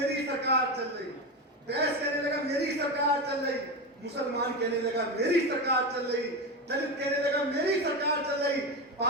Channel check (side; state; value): both; normal; correlation 0.17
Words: सरकार चल रही, बैस कहने लगा मेरी सरकार चल रही, मुसलमान कहने लगा मेरी सरकार चल रही, दलित कहने लगा मेरी सरकार चल रही,